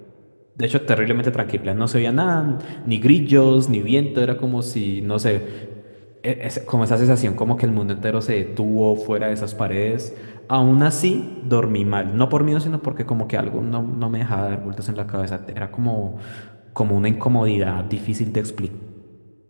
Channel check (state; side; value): inverted; both; correlation -1.00